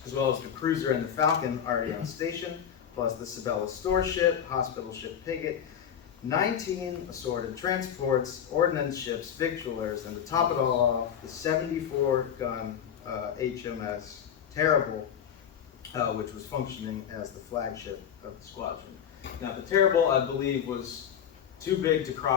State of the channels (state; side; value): quieter; right; 8.8 dB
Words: as well as the Cruiser and the Falcon already on station, plus the Sabella store ship, hospital ship Piggott, 19 assorted transports, ordnance ships, victualers, and to top it all off, the 74-gun HMS Terrible, which was functioning as the flagship of the squadron. Now, the Terrible, I believe, was too big to